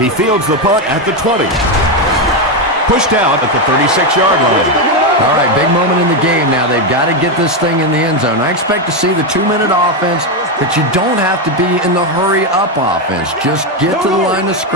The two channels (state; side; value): normal; both; correlation 0.08